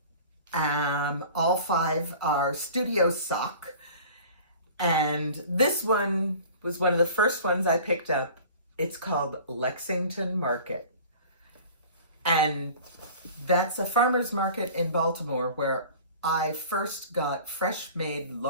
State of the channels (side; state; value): both; inverted; correlation -0.43